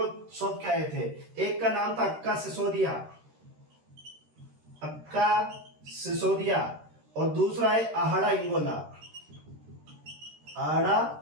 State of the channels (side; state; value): left; late; 13 ms